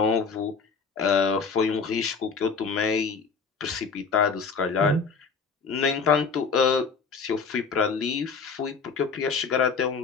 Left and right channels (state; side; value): quieter; right; 5.3 dB